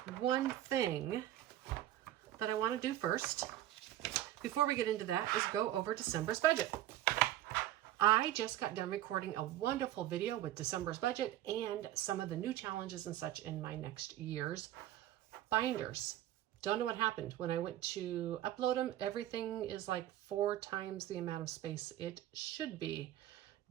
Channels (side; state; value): left; quieter; 13.6 dB